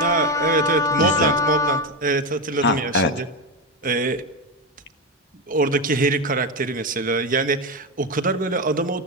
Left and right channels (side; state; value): both; normal; correlation 0.13